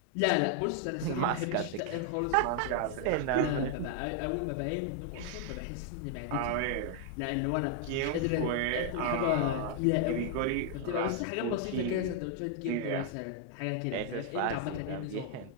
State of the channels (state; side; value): different; both; correlation 0.00